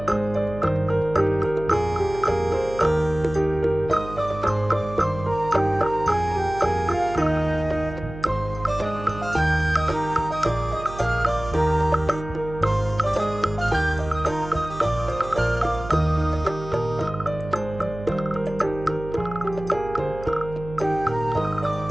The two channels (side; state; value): right; noise; hum, 13 dB below the sound